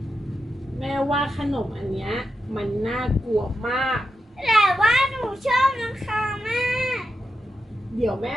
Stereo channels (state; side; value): normal; both; correlation 0.88